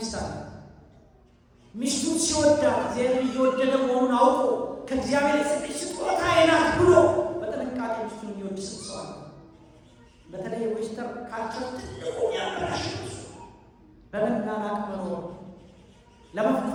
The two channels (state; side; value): identical; both; correlation 1.00